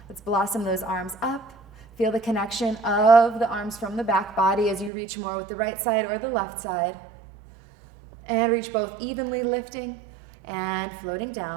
Let's blossom those arms up. Feel the connection of the arms from the back body as you reach more with the right side or the left side. And reach both evenly, lifting and floating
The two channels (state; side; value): drops out; left; at 4.9 s